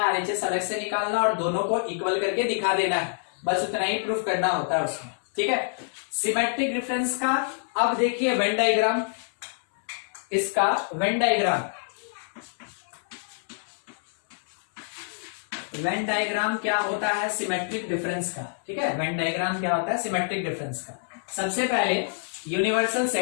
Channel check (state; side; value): silent; right; 60 dB below the other